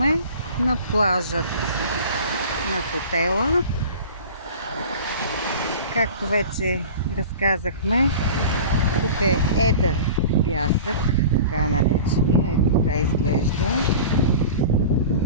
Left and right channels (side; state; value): both; inverted; correlation -0.37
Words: на плажът на хотела. Както вече разказахме, тук е едър пясък, така наречения. Ето така изглежда.